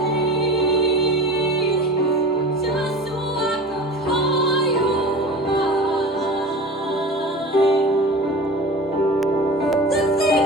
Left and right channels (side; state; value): both; normal; correlation 0.35